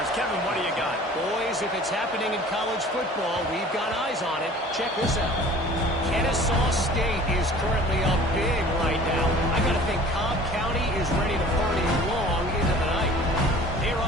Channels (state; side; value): normal; both; correlation 0.47